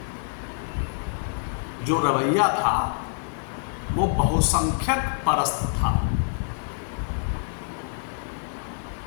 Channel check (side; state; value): right; silent; digital silence